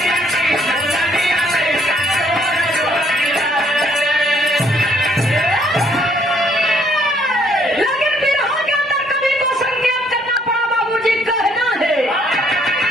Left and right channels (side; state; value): both; normal; correlation 0.66